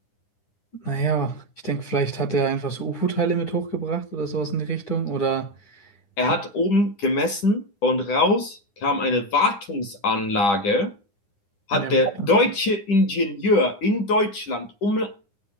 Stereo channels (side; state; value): right; late; 10 ms